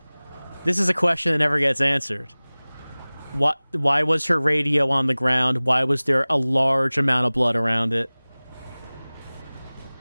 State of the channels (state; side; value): inverted; both; correlation -1.00